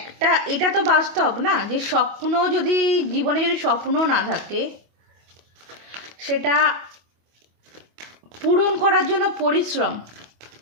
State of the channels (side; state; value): left; late; 25 ms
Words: এটা তো বাস্তব না, যে স্বপ্ন যদি জীবনে যদি স্বপ্ন না থাকে, সেটা পূরণ করার জন্য পরিশ্রম